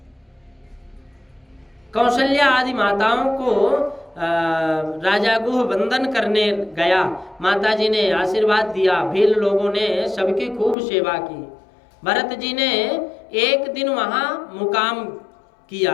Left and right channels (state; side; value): drops out; right; at 10.8 s